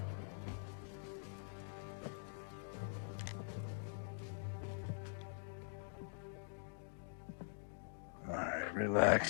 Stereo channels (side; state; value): right; silent; digital silence